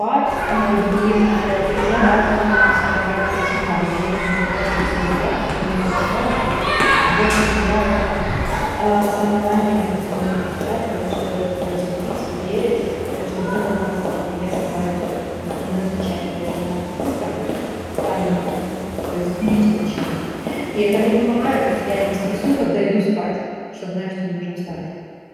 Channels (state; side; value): identical; both; correlation 1.00